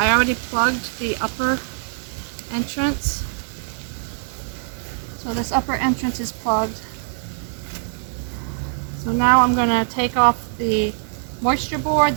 already plugged the upper entrance. So this upper entrance is plugged. So now I'm going to take off the moisture board,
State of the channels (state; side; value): silent; left; 64 dB below the other